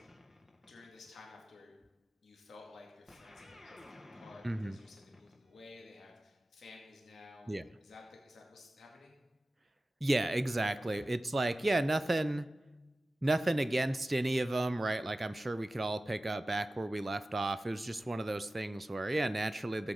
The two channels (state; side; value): normal; both; correlation 0.96